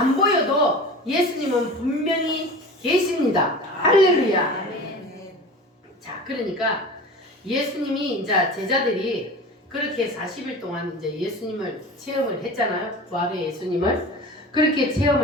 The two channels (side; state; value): both; normal; correlation 0.35